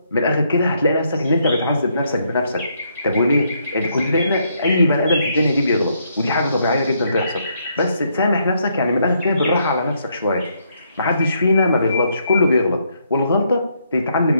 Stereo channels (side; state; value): both; inverted; correlation -0.74